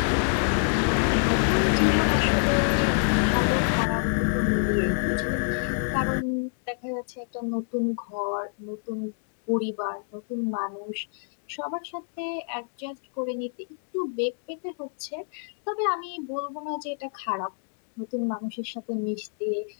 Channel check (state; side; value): silent; right; digital silence